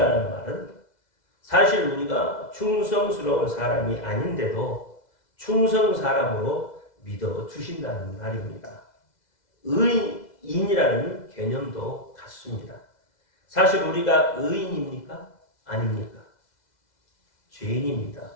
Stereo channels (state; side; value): late; right; 2.0 ms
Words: 말은 사실 우리가 충성스러운 사람이 아닌데도 충성 사람으로 믿어주신다는 말입니다. 의인이라는 개념도 같습니다. 사실 우리가 의인입니까? 아닙니까? 죄인입니다.